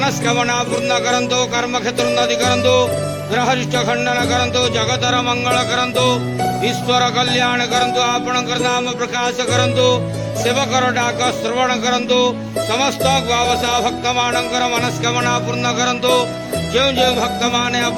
पूर्ण करंतु कर्म क्षेत्र उन्नति करंतु ग्रहरिष्ट खंडन करंतु जगतर मंगल करंतु ईश्वर कल्याण करंतु आपणकर नाम प्रकाश करंतु सेवकर डाक श्रवण करंतु समस्त ग्वावसा भक्त मानकर मनस्कामना पूर्ण करंतु जो जो भक्त माने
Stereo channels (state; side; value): identical; both; correlation 1.00